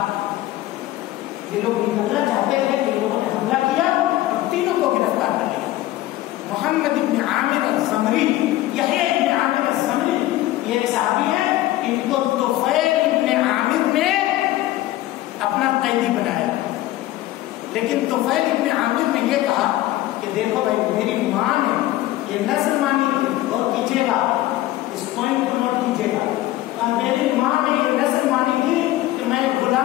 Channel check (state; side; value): quieter; right; 15.7 dB